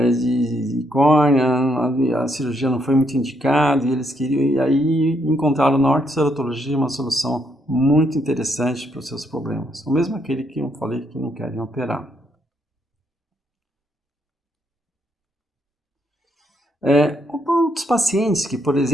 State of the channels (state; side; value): normal; both; correlation 0.74